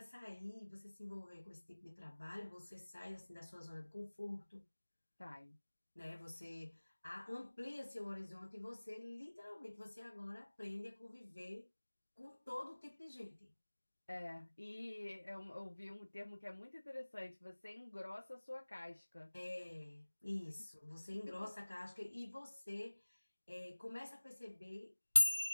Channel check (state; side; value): inverted; both; correlation -1.00